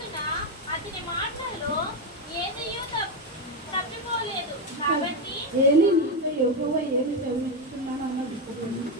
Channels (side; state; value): both; normal; correlation 0.08